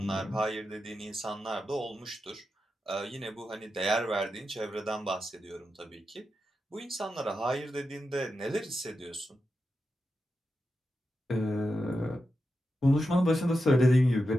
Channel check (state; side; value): normal; both; correlation 0.89